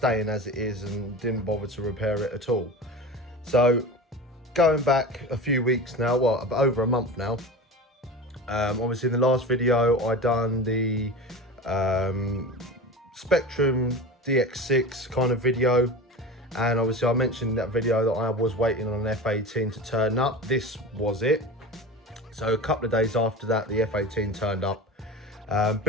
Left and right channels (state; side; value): normal; both; correlation 0.31